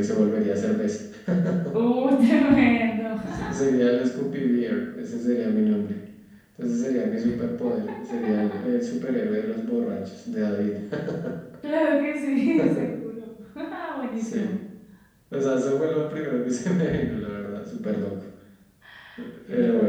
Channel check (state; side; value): identical; both; correlation 1.00